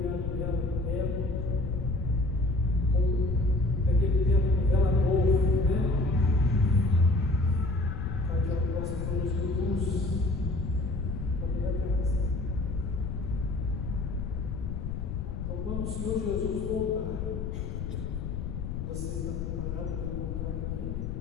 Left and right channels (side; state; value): left; noise; rumble, 4 dB below the sound